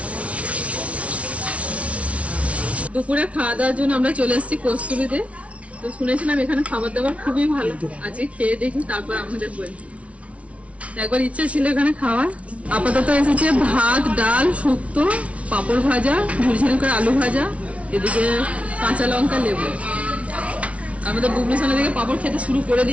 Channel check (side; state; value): left; late; 0.064 ms